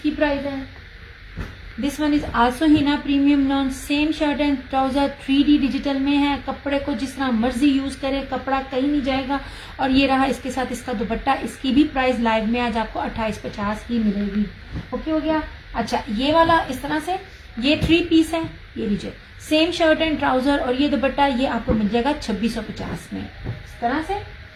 प्राइस है। This one is also Hina premium lawn, same shirt and trouser, 3D digital में है। कपड़े को जिस तरह मर्जी यूज करे, कपड़ा कहीं नहीं जाएगा। और ये रहा इसके साथ इसका दुपट्टा, इसकी भी प्राइस लाइव में आज आपको 2850 ही मिलेगी। ओके हो गया। अच्छा, ये वाला इस तरह से, ये 3 पीस है, ये लीजिए, सेम शर्ट एंड ट्राउजर और ये दुपट्टा, ये आपको मिल जाएगा 2650 में इस तरह से।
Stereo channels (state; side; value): identical; both; correlation 1.00